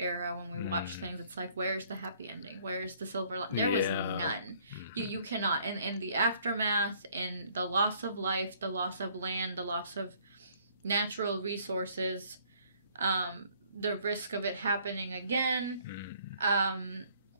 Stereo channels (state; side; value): inverted; both; correlation -0.61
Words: when we watch things, it's like, where's the happy ending? Where's the silver lining? There was none. You cannot. In the aftermath, in the loss of life, the loss of land, the loss of natural resources, the risk of it happening again,